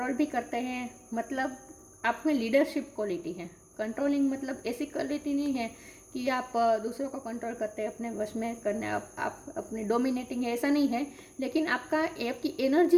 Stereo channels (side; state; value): both; identical; correlation 1.00